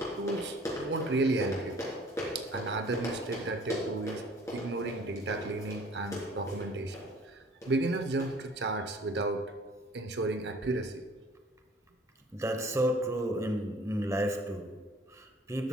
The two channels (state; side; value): normal; both; correlation 0.52